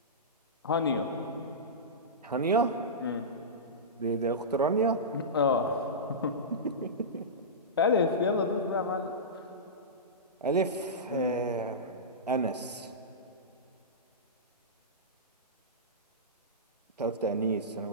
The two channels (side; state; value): both; normal; correlation -0.17